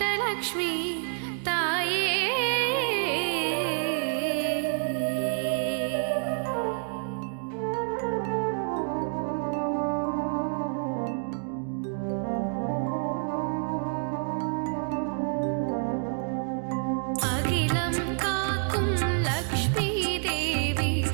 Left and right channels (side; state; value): left; silent; 59 dB below the other